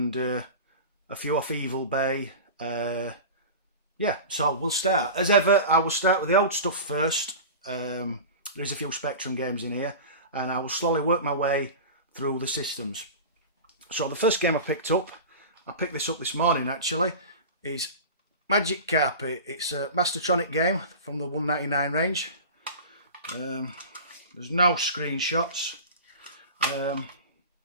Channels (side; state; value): both; inverted; correlation -0.31